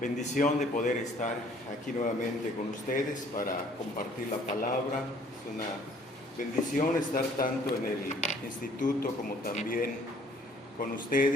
bendición de poder estar aquí nuevamente con ustedes para compartir la palabra. Es una bendición estar tanto en el instituto como también con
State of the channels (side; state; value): both; normal; correlation 0.58